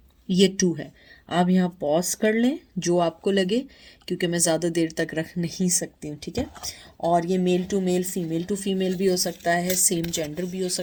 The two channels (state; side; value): identical; both; correlation 1.00